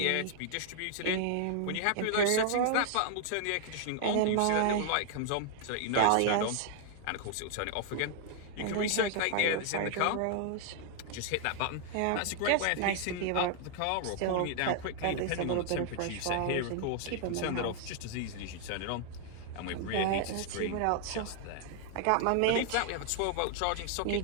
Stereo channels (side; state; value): both; different; correlation 0.00